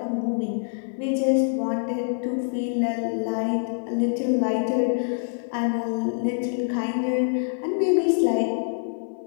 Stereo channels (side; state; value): right; silent; 60 dB below the other